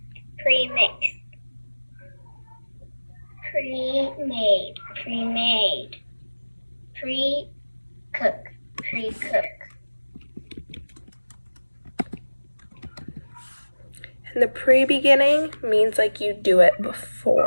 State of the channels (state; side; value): inverted; both; correlation -1.00